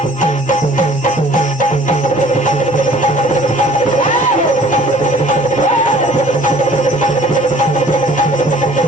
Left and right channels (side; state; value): both; normal; correlation 0.52